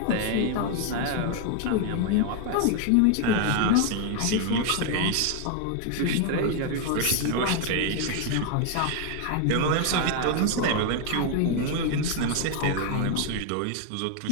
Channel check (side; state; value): both; different; correlation 0.00